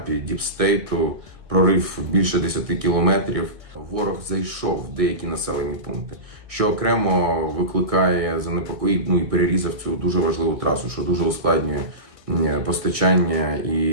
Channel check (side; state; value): left; late; 1.6 ms